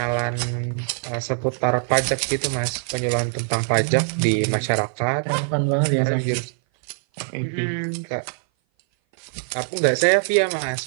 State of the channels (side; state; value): left; silent; 57 dB below the other